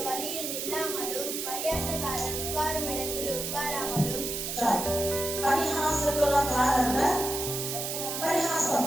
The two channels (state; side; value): noise; right; hiss, 3 dB below the sound